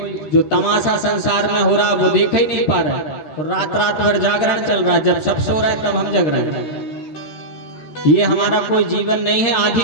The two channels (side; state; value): right; late; 13 ms